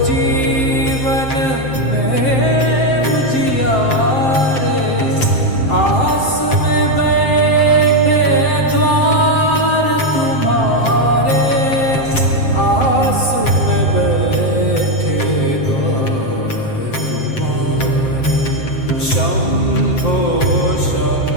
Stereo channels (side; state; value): right; late; 7.6 ms